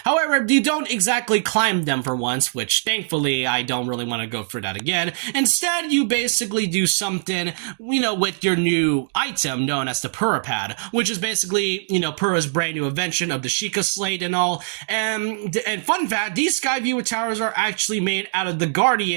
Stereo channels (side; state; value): left; silent; digital silence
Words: However, you don't exactly climb them for once, which thankfully I don't really want to go through that again. Instead, you basically do something, with your new item known as the Purah Pad, which is basically, Purah's brand new invention of the Sheikah Slate and all. And fun fact, these Skyview Towers are actually made out of the